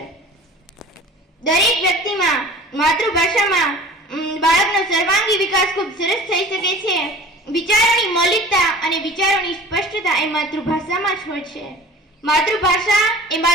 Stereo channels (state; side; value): normal; both; correlation 0.42